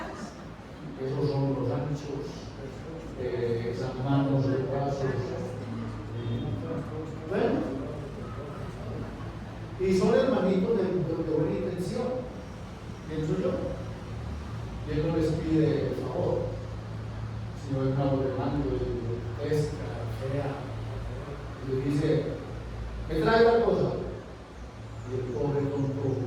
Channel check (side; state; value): both; identical; correlation 1.00